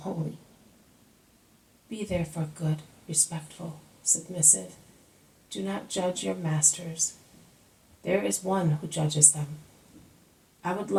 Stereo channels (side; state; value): both; identical; correlation 1.00